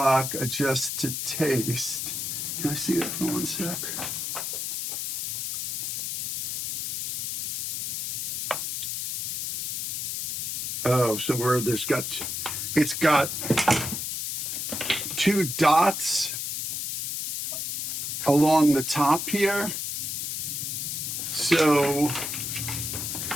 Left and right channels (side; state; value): left; noise; hiss, 2 dB below the sound